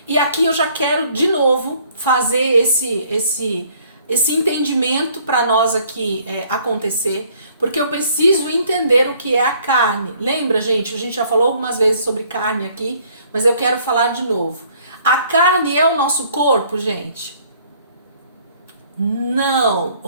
E aqui eu já quero de novo fazer esse entendimento para nós aqui acontecer, porque eu preciso entender o que é a carne. Lembra, gente? A gente já falou algumas vezes sobre carne aqui, mas eu quero falar de novo. A carne é o nosso corpo, gente? Não,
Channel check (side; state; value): both; inverted; correlation -0.61